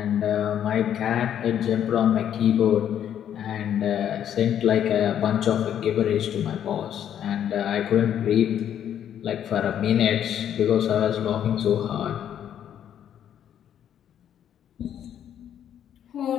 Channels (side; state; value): right; quieter; 9.8 dB